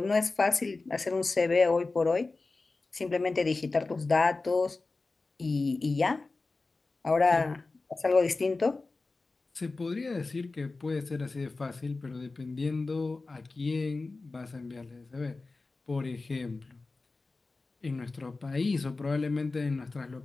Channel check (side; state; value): right; quieter; 3.6 dB